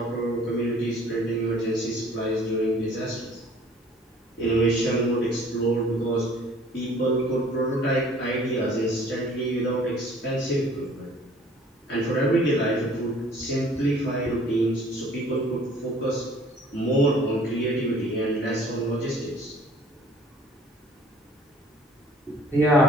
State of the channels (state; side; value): normal; both; correlation 0.53